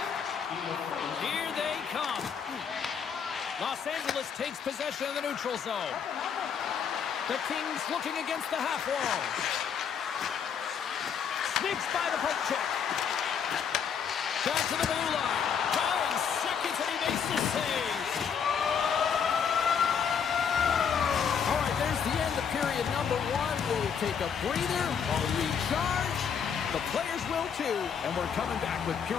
Here they come. Los Angeles takes possession of the neutral zone. The Kings looking against the half wall. Sneaks by the poke check. Back to the blue line. Going seconds and he makes the save. All right, there's the end of period number one. We'll take a breather. We'll recharge. The players will too. And we're coming back with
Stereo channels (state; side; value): quieter; right; 7.2 dB